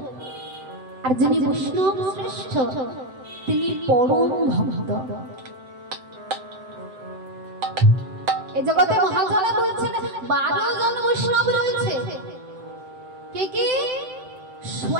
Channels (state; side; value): late; left; 7.7 ms